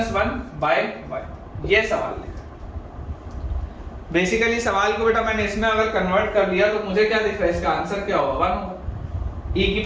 1 by y, ये सवाल है। बेसिकली सवाल को बेटा मैंने इसमें अगर कन्वर्ट कर दिया तो मुझे क्या दिख रहा है, इसका आंसर क्या होगा? 1 होगा। e की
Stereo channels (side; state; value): both; identical; correlation 1.00